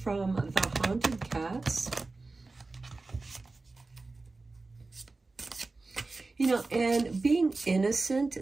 from the Haunted Cats. You know, and being innocent,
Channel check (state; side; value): quieter; left; 3.5 dB